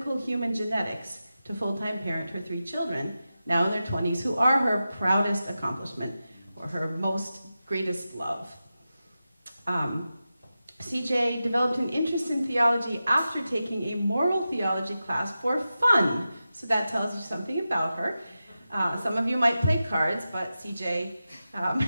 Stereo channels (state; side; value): inverted; both; correlation -0.92